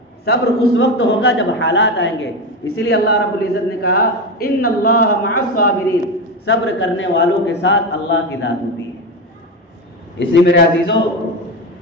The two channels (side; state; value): both; normal; correlation 0.17